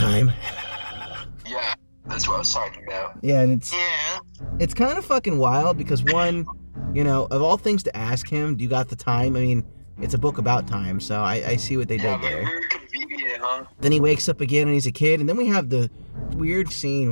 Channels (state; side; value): inverted; both; correlation -1.00